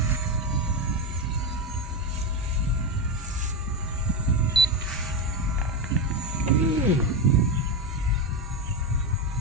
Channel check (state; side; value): normal; both; correlation 0.13